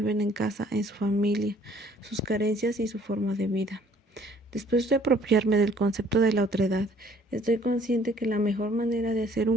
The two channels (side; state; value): both; normal; correlation 0.58